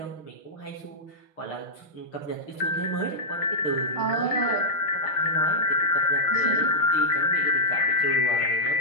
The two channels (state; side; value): late; right; 6.5 ms